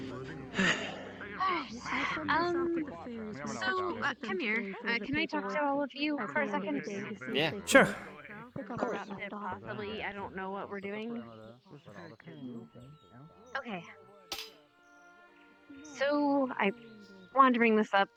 So, come here. Can I talk to all of you for a second? Yeah. Sure. Possibly, I don't know what we're doing. Okay. So, I wanted to bring this up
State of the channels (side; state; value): both; identical; correlation 1.00